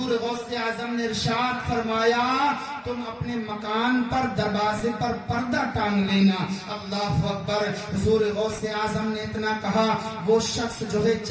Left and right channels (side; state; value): both; identical; correlation 1.00